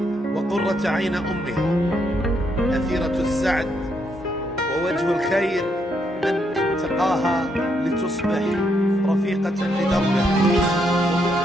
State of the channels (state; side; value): normal; both; correlation 0.76